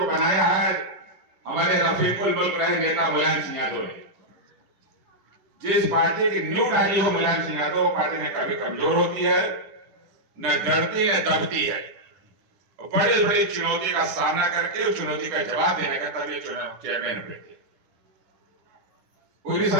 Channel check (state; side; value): late; left; 9.9 ms